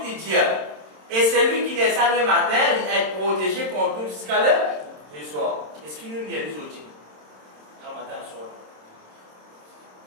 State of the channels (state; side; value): late; left; 27 ms